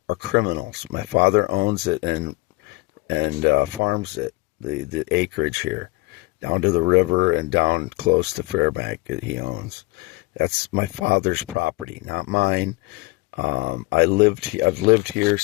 are criminals. My father owns it and farms it, the acreage here, down to the river and down close to Fairbank that he owns. That's my father's property, not mine. I've lived here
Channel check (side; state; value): right; quieter; 23.6 dB